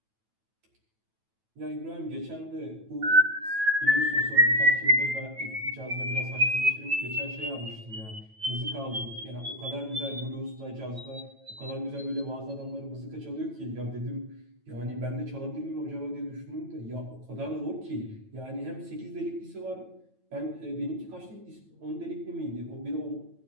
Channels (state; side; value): late; left; 9.1 ms